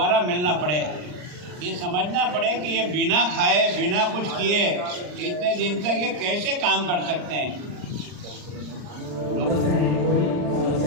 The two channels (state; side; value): late; left; 39 ms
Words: मिलना पड़े, ये समझना पड़े कि ये बिना खाए बिना कुछ किए इतने दिन तक ये कैसे काम कर सकते हैं।